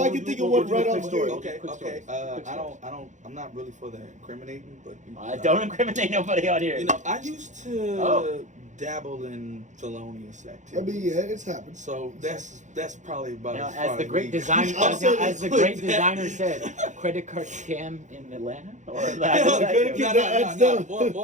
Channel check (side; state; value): left; late; 0.35 ms